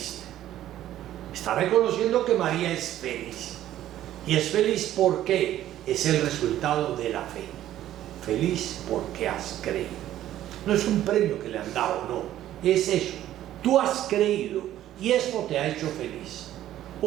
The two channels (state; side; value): quieter; left; 12.8 dB